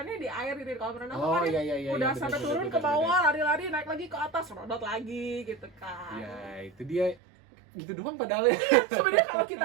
di air gitu di kolam renang Oh, kan iya, udah bener, sampai bener, turun bener, ke bawah lari-lari naik lagi ke atas serodot lagi gitu kan. Ya, itu dia gitu doang padahal ya. Sebenarnya kalau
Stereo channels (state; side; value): drops out; left; at 7.2 s